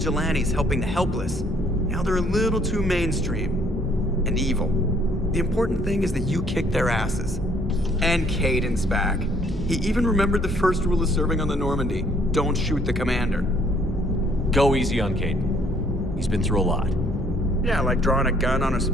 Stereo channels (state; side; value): normal; both; correlation 0.63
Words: helping the helpless. Now they're a little too mainstream. And evil. The important thing is that you kicked their asses. And Caden's back. He even remembered the first rule of serving on the Normandy. Don't shoot the commander. Go easy on Caden. He's been through a lot. Yeah, like drawing a gun on a